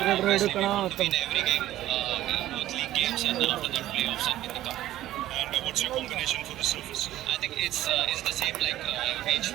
Obviously, we want to win every game, both league games, and after that, playoffs and win the cup. And what's your combination for the surface? I think it's the same like which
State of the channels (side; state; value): left; quieter; 14.1 dB